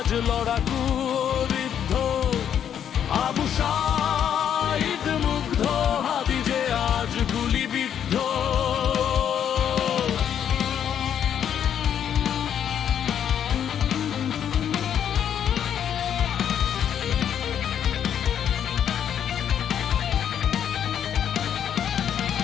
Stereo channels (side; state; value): right; quieter; 9.1 dB